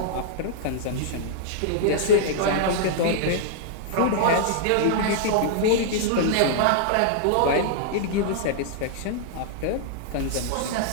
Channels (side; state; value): both; different; correlation -0.01